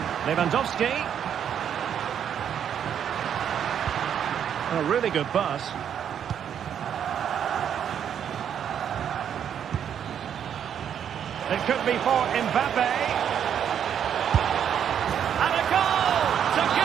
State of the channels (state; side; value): quieter; left; 8.8 dB